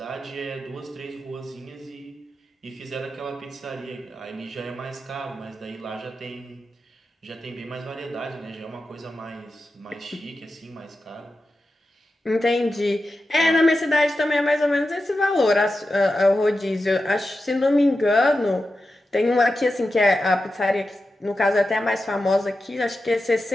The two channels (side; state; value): both; normal; correlation 0.91